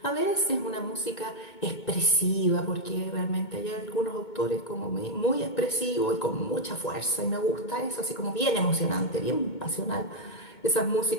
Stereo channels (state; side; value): late; right; 2.2 ms